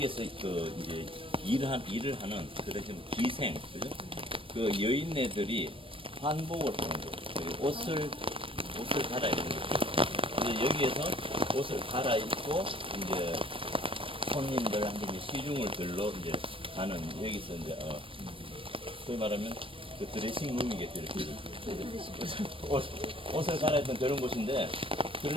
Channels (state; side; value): late; left; 0.25 ms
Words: 그 이제 일을 하는 그런 기생, 그죠? 그 여인네들이 한복을 하는 거예요. 그리고 옷을 갈아입는 거죠. 이제 여기에서 옷을 갈아입고 이제 손님들한테 이제 시중을 들러 이제 가는 여기서 이제 소위 말하면 그 드레싱 룸이겠죠. 이렇게 옷을 갈아입던 그런 곳인데